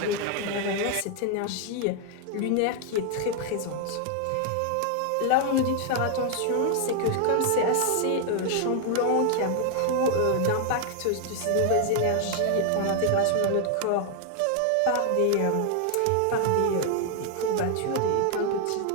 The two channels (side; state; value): both; different; correlation 0.00